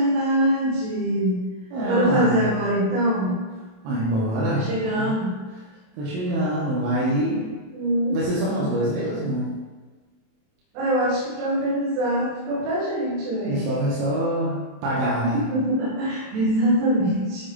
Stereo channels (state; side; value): late; left; 27 ms